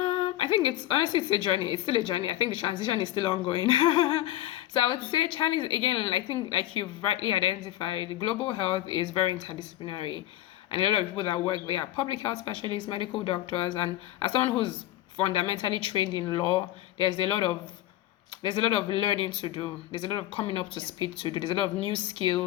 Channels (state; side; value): quieter; right; 14.4 dB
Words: think it's a journey. It's still a journey. I think the transition is still ongoing. So I would say challenge again. I think, like you've rightly identified, global health is very interdisciplinary, and a lot of people that work there are public health specialists, medical doctors, and as someone who's fundamentally trained in law, there's a lot of there's a lot of learning to do. There's a lot of coming up to speed to do. There's a lot of new